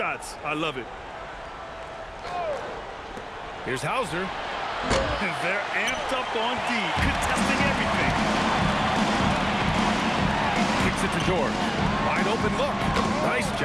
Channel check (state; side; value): identical; both; correlation 1.00